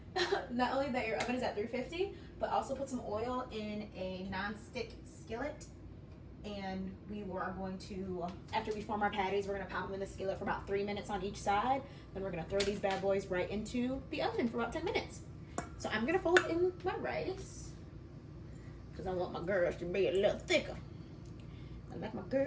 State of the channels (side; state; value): both; identical; correlation 1.00